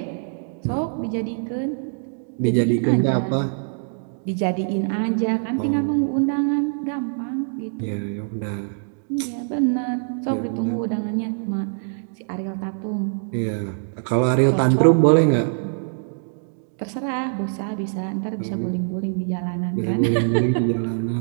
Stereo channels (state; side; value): silent; left; digital silence